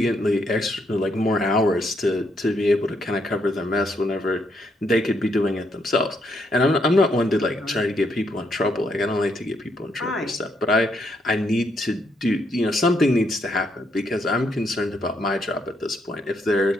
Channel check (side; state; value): both; normal; correlation 0.75